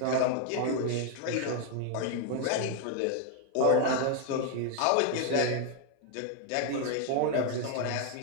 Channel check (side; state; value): both; different; correlation 0.00